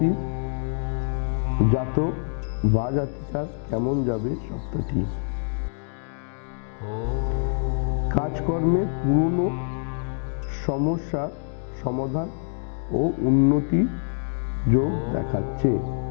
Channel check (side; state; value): right; silent; 61 dB below the other